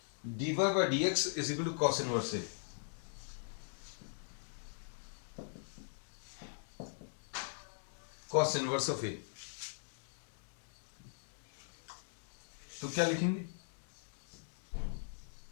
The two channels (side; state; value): right; silent; digital silence